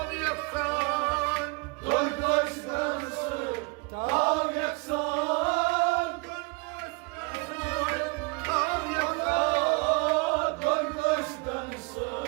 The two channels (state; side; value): quieter; left; 30.2 dB